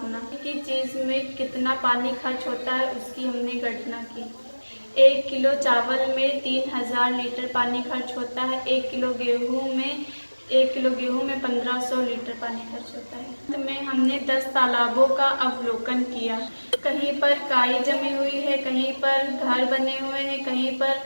कि चीज़ में कितना पानी खर्च होता है उसकी हमने गणना की। 1 किलो चावल में 3000 लीटर पानी खर्च होता है। 1 किलो गेहूँ में 1500 लीटर पानी खर्च होता है। अंत में हमने 10 तालाबों का अवलोकन किया। कहीं पर काई जमी हुई है, कहीं पर घर बने हुए हैं, कहीं पर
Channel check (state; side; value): inverted; both; correlation -1.00